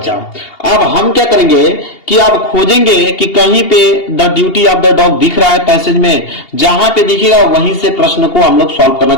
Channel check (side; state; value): right; late; 2.8 ms